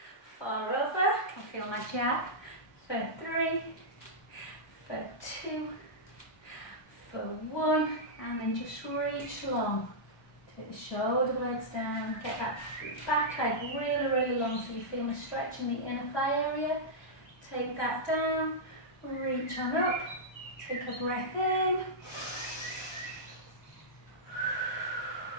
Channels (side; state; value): right; late; 1.2 ms